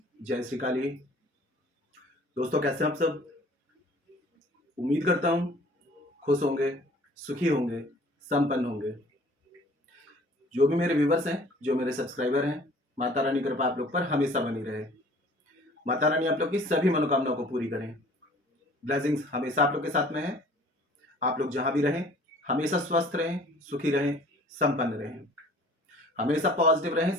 जय श्री काली। दोस्तों कैसे हैं आप सब? उम्मीद करता हूँ खुश होंगे, सुखी होंगे, संपन्न होंगे। जो भी मेरे व्यूवर्स हैं, जो मेरे सब्सक्राइबर हैं, माता रानी की कृपा आप लोग पर हमेशा बनी रहे। माता रानी आप लोग की सभी मनोकामनाओं को पूरी करें। ब्लेसिंग्स हमेशा आप लोग के साथ में है। आप लोग जहां भी रहें हमेशा स्वस्थ रहें, सुखी रहें, संपन्न रहें, हमेशा पॉजिटिव रहें,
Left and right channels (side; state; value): both; normal; correlation 0.51